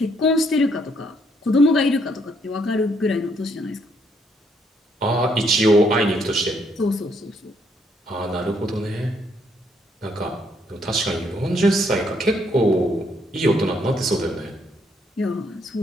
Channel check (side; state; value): both; normal; correlation 0.71